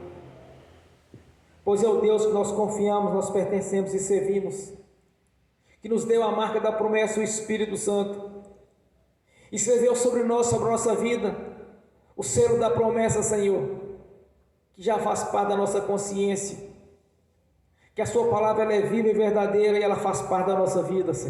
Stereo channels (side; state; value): both; identical; correlation 1.00